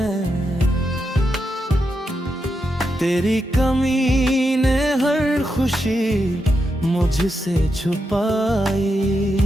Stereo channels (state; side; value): normal; both; correlation 0.85